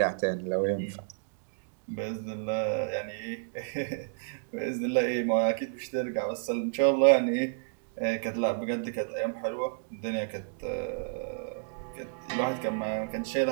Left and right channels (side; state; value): left; silent; digital silence